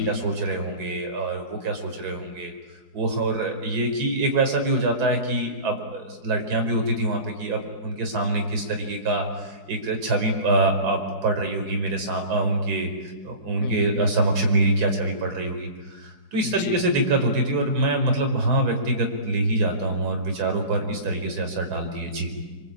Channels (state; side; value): late; left; 4.7 ms